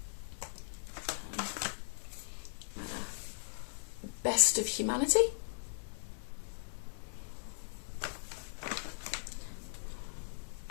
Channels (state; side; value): silent; right; digital silence